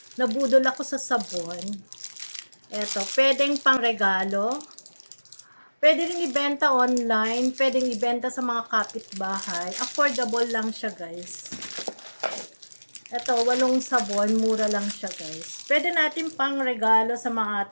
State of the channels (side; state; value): both; inverted; correlation -1.00